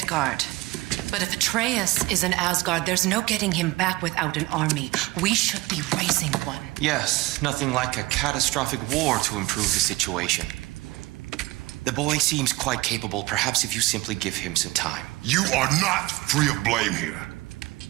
But if Atreus is in Asgard, there's no getting him back without an army. We should be raising one. Yes, nothing like a catastrophic war to improve the situation. The boy seems quite capable. Perhaps if you simply give him some time. You are not free of blame here.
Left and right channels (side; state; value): left; quieter; 20.7 dB